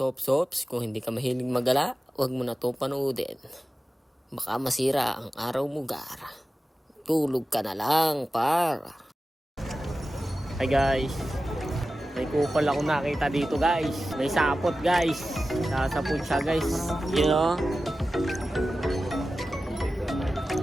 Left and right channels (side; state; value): both; normal; correlation 0.94